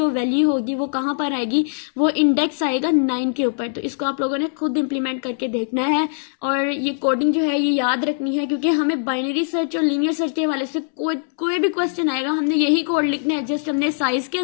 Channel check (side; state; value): right; silent; 65 dB below the other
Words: वैल्यू होगी वो कहाँ पर आएगी, वो इंडेक्स आएगा 9 के ऊपर। तो इसको आप लोगों ने खुद इंप्लीमेंट करके देखना है, और ये कोडिंग जो है ये याद रखनी है, क्योंकि हमें बाइनरी सर्च और लीनियर सर्च के हवाले से कोई भी क्वेश्चन आएगा, हमने यही कोड लिखना है। जस्ट हमने साइज के